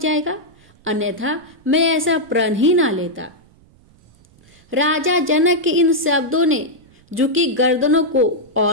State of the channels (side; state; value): right; noise; rumble, 29 dB below the sound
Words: अन्यथा मैं ऐसा प्रण ही ना लेता। राजा जनक के इन शब्दों ने झुकी गर्दनों को